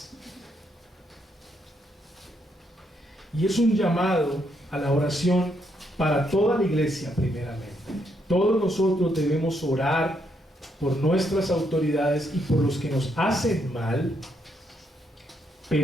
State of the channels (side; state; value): both; normal; correlation 0.76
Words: Y es un llamado a la oración para toda la iglesia primeramente. Todos nosotros debemos orar por nuestras autoridades y por los que nos hacen mal,